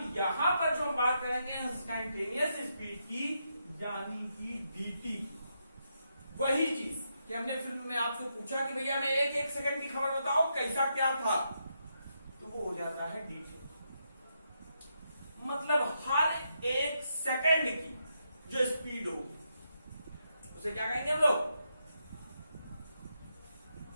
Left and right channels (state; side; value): inverted; both; correlation -0.82